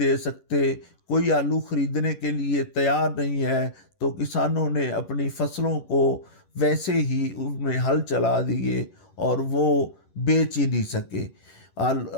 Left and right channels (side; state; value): right; late; 11 ms